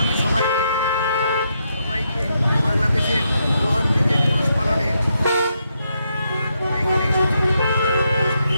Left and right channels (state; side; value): inverted; both; correlation -0.80